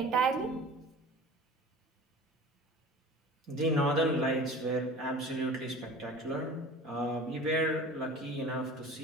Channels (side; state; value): both; normal; correlation 0.40